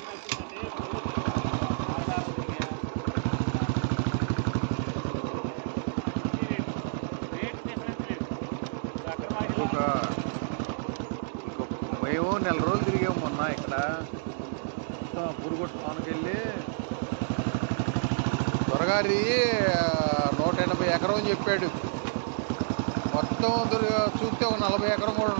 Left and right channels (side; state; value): left; silent; digital silence